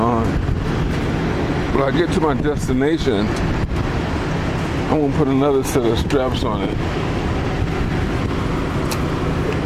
When I get to my destination, I'm gonna put another set of straps on it.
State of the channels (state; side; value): identical; both; correlation 1.00